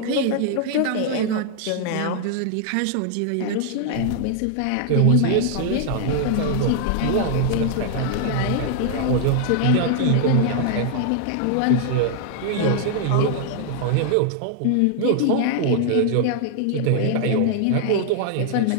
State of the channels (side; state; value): both; different; correlation 0.00